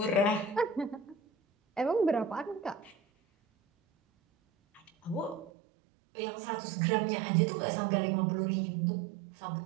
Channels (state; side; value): drops out; left; at 5.5 s